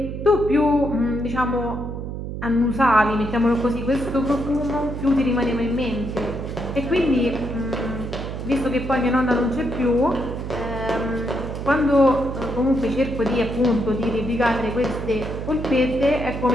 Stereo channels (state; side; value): noise; right; hum, 6 dB below the sound